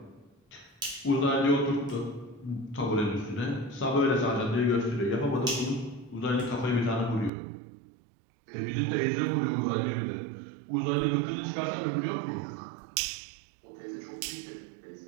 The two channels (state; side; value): drops out; left; at 7.3 s